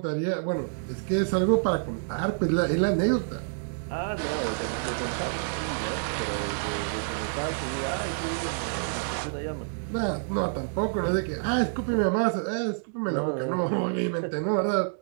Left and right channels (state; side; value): silent; left; digital silence